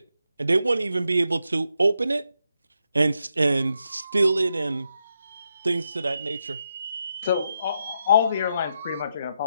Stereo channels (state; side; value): inverted; both; correlation -0.83